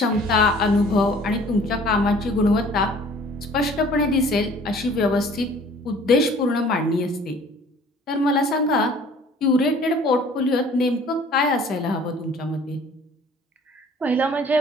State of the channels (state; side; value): normal; both; correlation 0.52